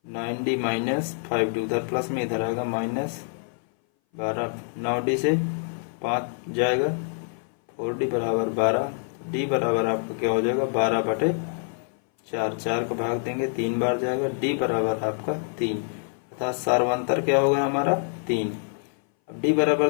9d minus 5d, उधर प्लस में इधर आएगा माइनस 12, 9d से 5 जाएगा, 4d बराबर 12, तो d बराबर आपका क्या हो जाएगा 12/4, 4 का भाग देंगे 3 बार जाएगा, d बराबर आपका 3, अर्थात सार्वंतर क्या होगा हमारा 3। अब d बराबर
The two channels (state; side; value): silent; right; 59 dB below the other